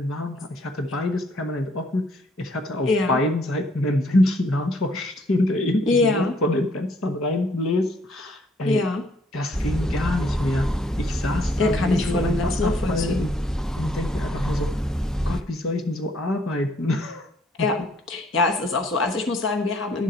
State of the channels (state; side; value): normal; both; correlation 0.65